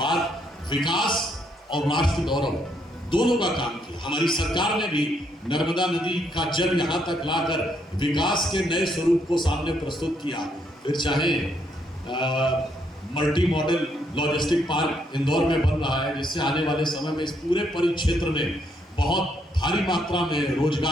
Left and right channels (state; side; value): normal; both; correlation 0.73